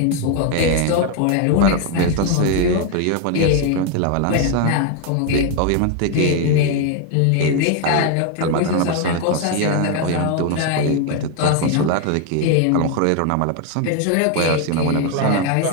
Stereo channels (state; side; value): different; both; correlation 0.01